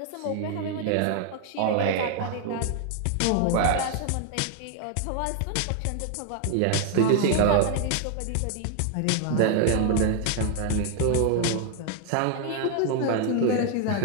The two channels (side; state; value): both; different; correlation 0.00